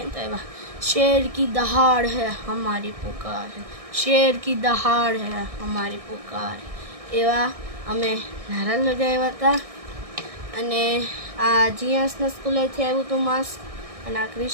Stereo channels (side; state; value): left; late; 1.6 ms